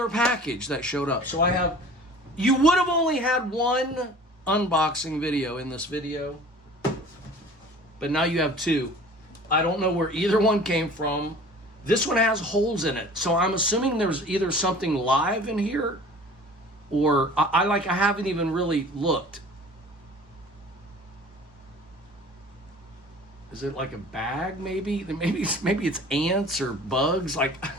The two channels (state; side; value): normal; both; correlation 0.45